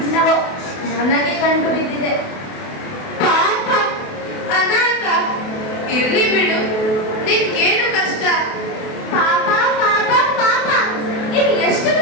ನನಗೆ ಕಂಡು ಬಿದ್ದಿದೆ. ಪಾಪ, ಅನಾಥ. ಇರ್ಲಿ ಬಿಡು, ನಿನ್ಗೇನು ಕಷ್ಟ? ಪಾಪ ಪಾಪ ಪಾಪ, ಇದು ಎಷ್ಟು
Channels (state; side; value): late; right; 28 ms